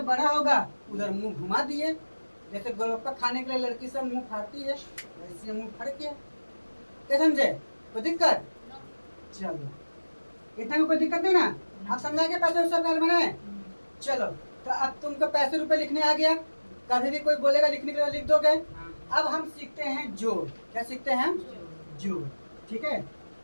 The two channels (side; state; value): both; inverted; correlation -1.00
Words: बड़ा होगा उधर मुंह घुमा दिए। जैसे गोलगप्पा खाने के लिए लड़की सब मुंह फाड़ती है, वैसे मुंह फाड़ किया, क्या समझे, कोई दिक्कत, चलो इतना में कोई दिक्कत नहीं ना, आप समझा के पैसे सब घर में। चलो तो अब तुमको पैसे रुपए लिखने आ गया, कभी भी कोई बोलेगा लिखने के लिए लिख दोगे। अब हम सीखते हैं जोड़, क्या सीखते हैं, जोड़, ठीक है।